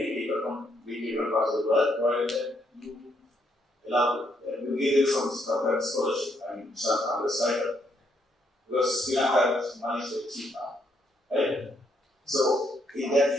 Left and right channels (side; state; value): both; normal; correlation 0.73